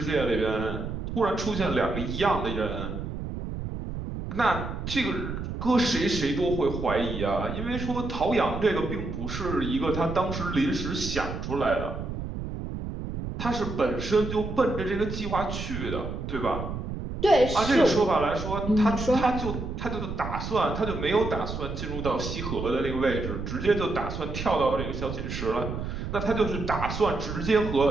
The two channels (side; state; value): right; noise; rumble, 6 dB below the sound